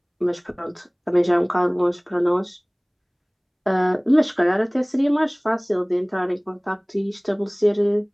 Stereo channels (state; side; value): identical; both; correlation 1.00